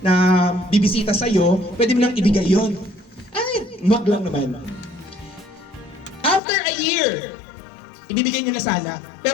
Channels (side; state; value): right; drops out; at 6.4 s